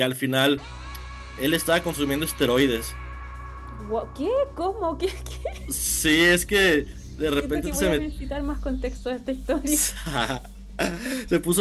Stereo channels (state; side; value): identical; both; correlation 1.00